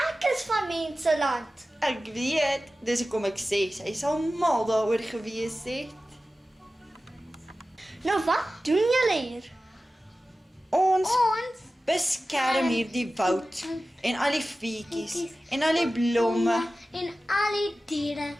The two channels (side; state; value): both; normal; correlation 0.95